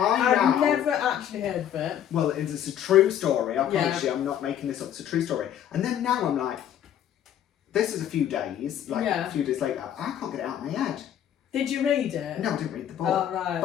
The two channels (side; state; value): right; quieter; 10.3 dB